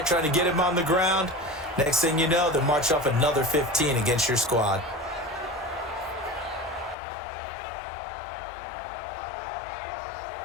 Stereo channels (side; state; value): right; drops out; at 7.0 s